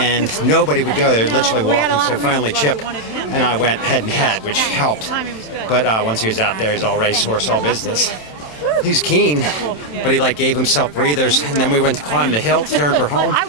nobody would go. They were literally walking. So finally, Chip and I went head and head, which helped. But once he was out there, he's all racehorse, all business. He's keen, but he gave himself breathers, and then we went to climb the hill to turn for home,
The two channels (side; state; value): right; late; 27 ms